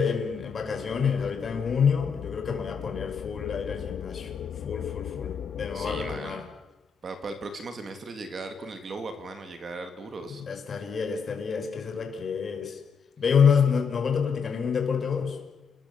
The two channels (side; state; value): right; quieter; 6.0 dB